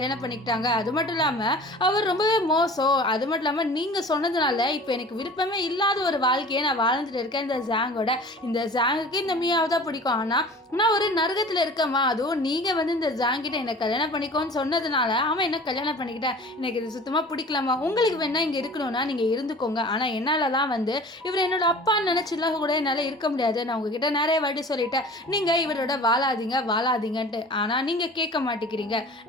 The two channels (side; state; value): both; normal; correlation 0.42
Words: பண்ணிக்கிட்டாங்க, அது மட்டும் இல்லாமல் அவர் ரொம்பவே மோசம், அது மட்டும் இல்லாமல் நீங்கள் சொன்னதுனால இப்போ எனக்கு விருப்பமே இல்லாத ஒரு வாழ்க்கையை நான் வாழ்ந்துட்டு இருக்கேன். இந்த ஜாங்கோட இந்த ஜாங்குக்கு இந்த மியாவை தான் பிடிக்கும், ஆனால் நான் ஒரு நரகத்தில் இருக்கேம்மா, அதுவும் நீங்கள் வந்து இந்த ஜாங்கிட்ட என்னை கல்யாணம் பண்ணிக்கோன்னு சொன்னதுனால அவன் என்ன கல்யாணம் பண்ணிக்கிட்டேன், எனக்கு இது சுத்தமாக பிடிக்கலாமா, உங்களுக்கு வேணா இங்கே இருக்கணும்னா நீங்கள் இருந்துக்கோங்க, ஆனால் என்னால் தான் வந்து இவர் என்னோட அப்பான்னு நினச்சிலாம் கூட என்னால் இருக்க முடியாது, நான் உங்ககிட்ட நிறைய வாட்டி சொல்லிட்டேன் நீங்கள் இவரோட வாழாதீங்கன்ட்டு, ஆனால் நீங்கள் கேட்க மாட்டேங்கிறீங்க,